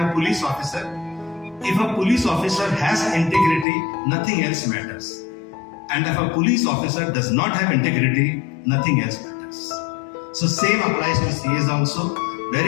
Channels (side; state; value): right; drops out; at 3.7 s